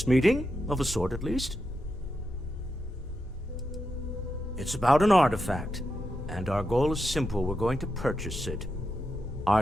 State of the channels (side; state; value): both; normal; correlation 0.87